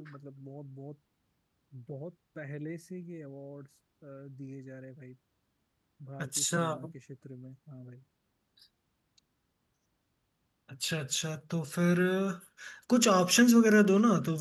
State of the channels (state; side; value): identical; both; correlation 1.00